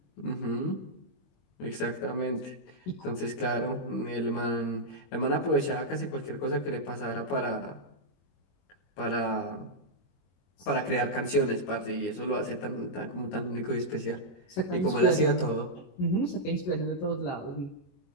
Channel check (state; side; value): late; right; 22 ms